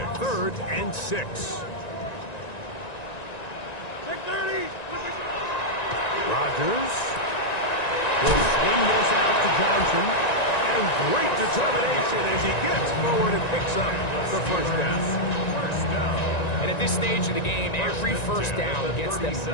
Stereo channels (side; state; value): right; late; 1.9 ms